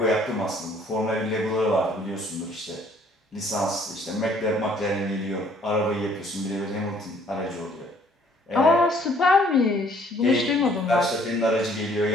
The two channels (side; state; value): both; normal; correlation 0.60